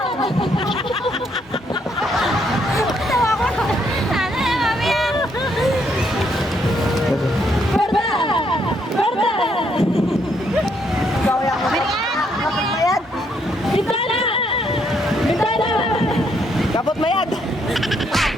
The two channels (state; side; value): normal; both; correlation 0.72